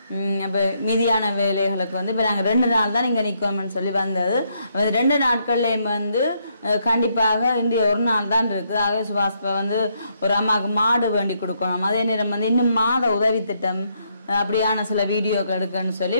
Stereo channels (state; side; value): inverted; both; correlation -0.75